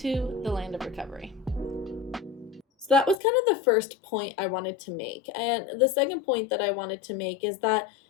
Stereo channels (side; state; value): right; drops out; at 3.2 s